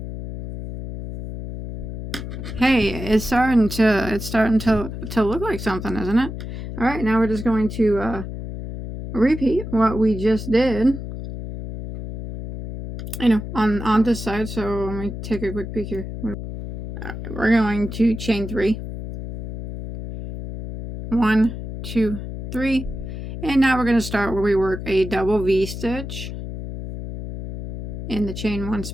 Hey, it's starting to look like something, isn't it? All right, now we're just going to repeat what we just did, you know, on this side. So let me take a quick peek here. All right, we're going to chain 3. 1, 2, 3, and now we're going to start where we work a double V stitch in the chain 1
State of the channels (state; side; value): noise; left; hum, 8 dB below the sound